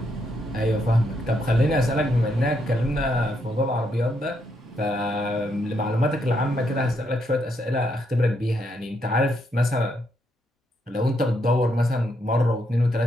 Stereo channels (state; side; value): normal; both; correlation 0.77